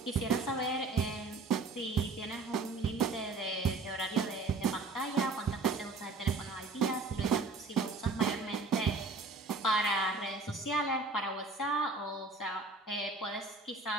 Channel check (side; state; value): left; quieter; 3.7 dB